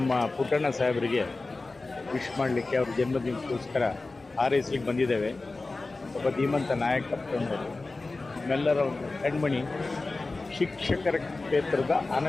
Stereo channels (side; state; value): right; quieter; 3.4 dB